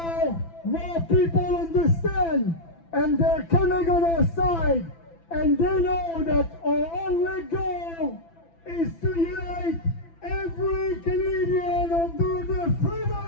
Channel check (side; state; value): right; late; 6.0 ms